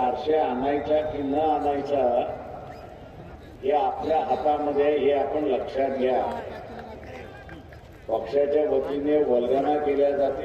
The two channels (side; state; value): both; identical; correlation 1.00